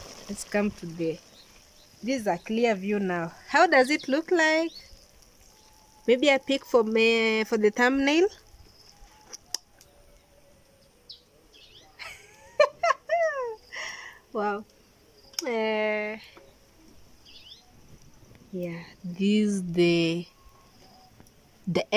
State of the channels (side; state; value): both; identical; correlation 1.00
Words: Let's come to the... This is a clear view now. How does it look like? Maybe I pick for the thumbnail. Wow. Yeah, this is the